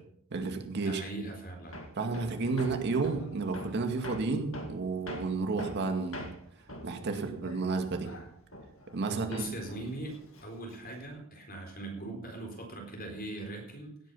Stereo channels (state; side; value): quieter; left; 3.2 dB